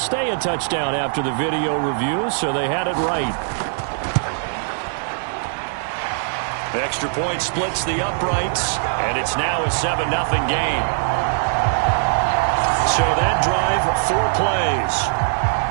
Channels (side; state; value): left; silent; digital silence